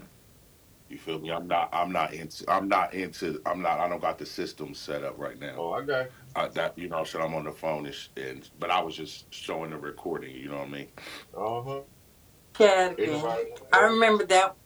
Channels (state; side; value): identical; both; correlation 1.00